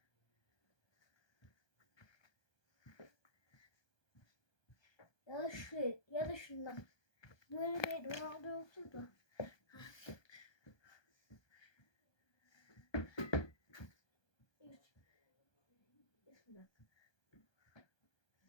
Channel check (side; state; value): right; late; 1.2 ms